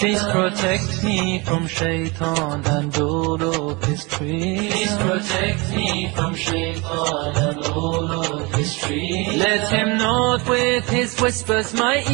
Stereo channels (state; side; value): quieter; left; 26.7 dB